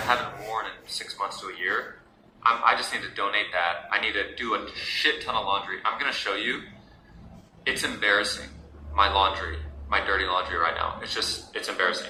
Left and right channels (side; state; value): both; identical; correlation 1.00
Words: worn in 6 months to a year. I just need to donate that. I need to do a shit ton of laundry. I'm gonna show you. It's embarrassing, my laundry, my dirty laundry right now. It's